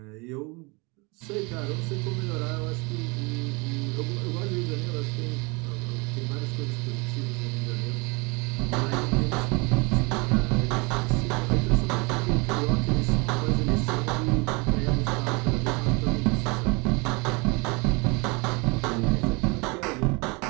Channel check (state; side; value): quieter; left; 28.5 dB